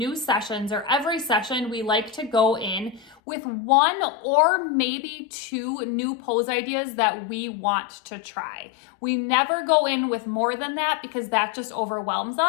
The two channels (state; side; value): drops out; right; at 3.2 s